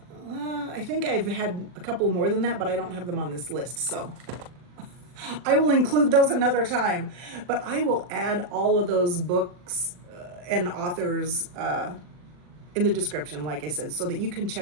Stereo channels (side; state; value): left; late; 40 ms